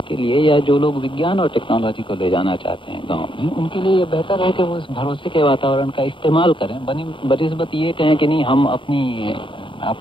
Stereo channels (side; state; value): right; late; 0.24 ms